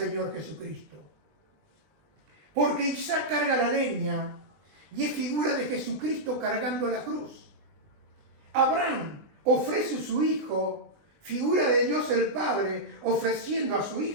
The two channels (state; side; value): late; left; 20 ms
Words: Jesucristo. Porque Isaac carga la leña y es figura de Jesucristo cargando la cruz. Abraham ofrece a su hijo, figura de Dios el Padre ofreciendo a su